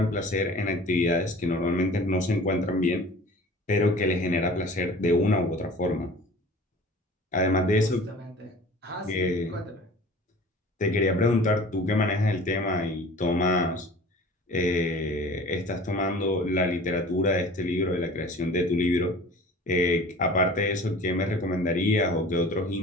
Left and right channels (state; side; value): normal; both; correlation 0.43